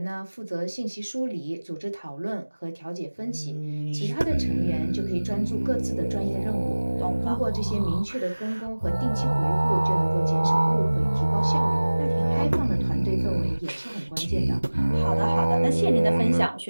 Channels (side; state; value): both; inverted; correlation -1.00